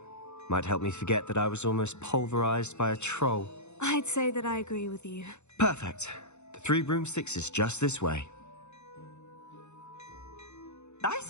Might help me forget that I was almost pulverized by a troll. I'd say that I agree with you. Perfect. The 3 broomsticks is just this way. I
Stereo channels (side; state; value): right; late; 0.82 ms